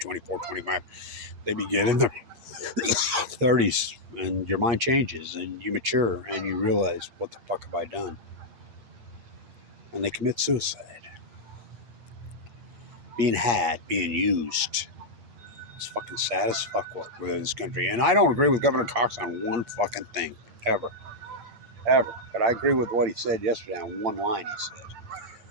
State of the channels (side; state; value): left; late; 8.5 ms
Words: 25. They begin in their 30s, and your mind changes, and you mature, and you realize, what the fuck have I done? And they commit suicide. Being used. It's fucking sad as fuck with this country. And I don't agree with Governor Cox on one fucking thing, ever. Ever. But I agree with what he said yesterday on one line he said.